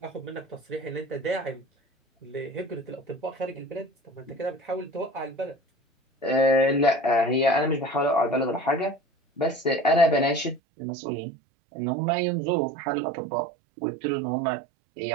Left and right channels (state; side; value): drops out; left; at 10.6 s